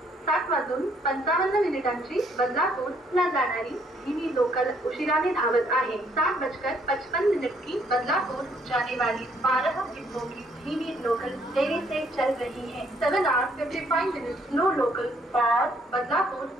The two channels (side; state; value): both; normal; correlation 0.67